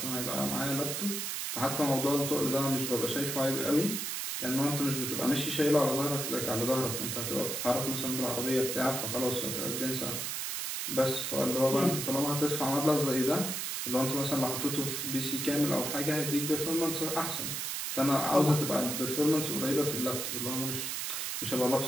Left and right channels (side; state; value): right; noise; hiss, 2 dB below the sound